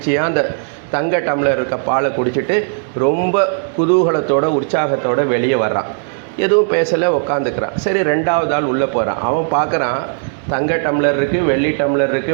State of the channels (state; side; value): silent; left; digital silence